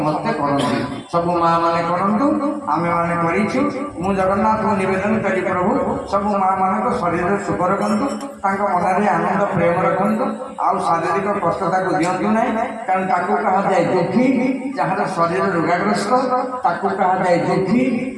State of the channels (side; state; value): both; identical; correlation 1.00